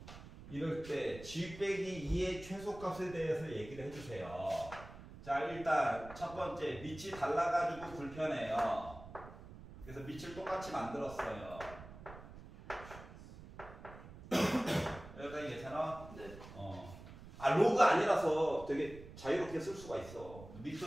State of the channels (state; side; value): noise; right; rumble, 15 dB below the sound